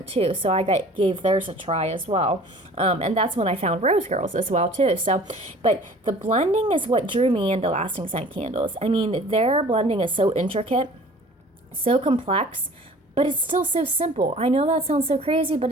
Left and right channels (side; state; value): both; normal; correlation 0.47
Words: too. So I gave theirs a try as well. And that's when I found Rose Girls as well too. So, but the blending is what drew me into lasting scent candles. I mean, their blending is so intricate, so complex, but it's still so simple. I know that sounds so crazy, but